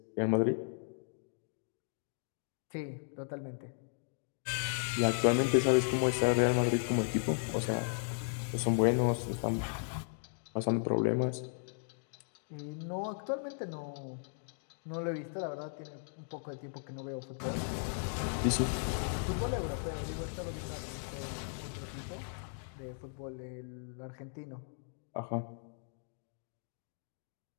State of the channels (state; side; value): silent; right; digital silence